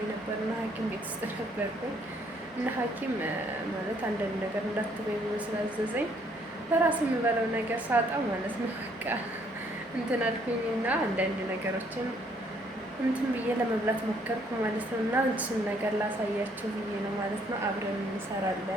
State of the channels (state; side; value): normal; both; correlation 0.66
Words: ነበርና ሐኪም ቤት ውስጥ ነበርኩኝ እና ሐኪም ማለት አንዳንድ ነገር እንዳትበይ ብሎ ስላዘዘኝ በራሴ የምበለው ነገር ሳጣ ማለት ነው በቃ እንትን አልኩኝና አንዳንድ ነገሮችን እንትን ብዬ ለመብላት ሞከርኩ ማለት ነው። እና እሱን ነገር ላሳያችሁ ብዬ ነው ማለት ነው። አብረን